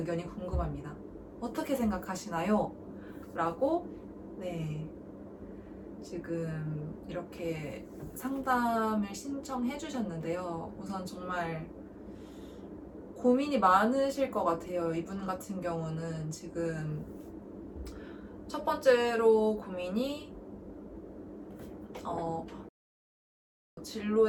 궁금합니다. 어떻게 생각하시나요? 라고 지금 이렇게 상담을 신청해 주셨는데요. 우선 정말 고민이 많으실 것 같아요. 이분 같은 경우는 지금 첫 번째로 고민이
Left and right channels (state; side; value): identical; both; correlation 1.00